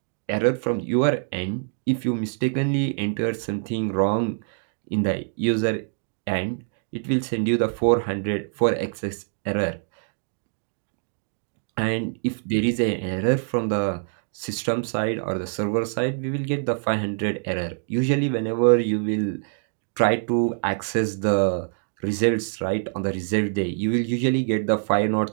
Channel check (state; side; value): silent; left; digital silence